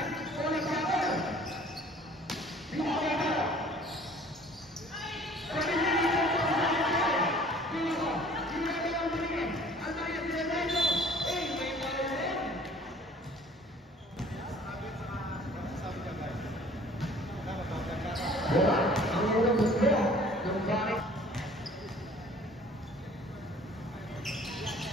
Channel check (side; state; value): both; normal; correlation 0.52